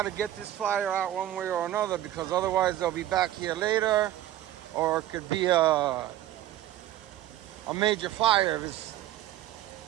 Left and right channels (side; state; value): left; quieter; 13.4 dB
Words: to get this fire out one way or another, because otherwise they'll be back here later, or it could be a major fire